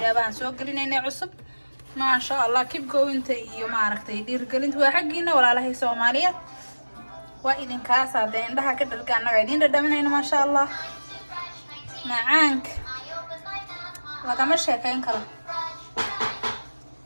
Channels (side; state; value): both; inverted; correlation -1.00